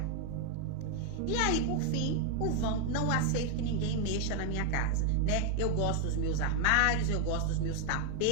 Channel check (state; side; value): different; both; correlation 0.00